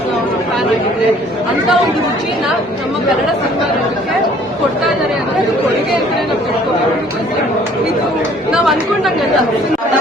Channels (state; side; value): normal; both; correlation 0.56